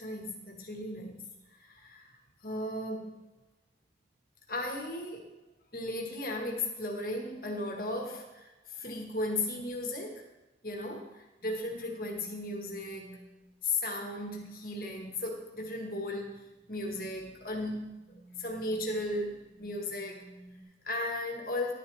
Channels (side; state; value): both; normal; correlation 0.29